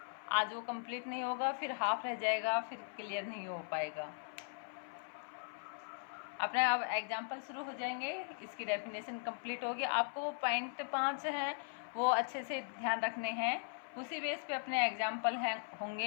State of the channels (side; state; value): right; silent; 52 dB below the other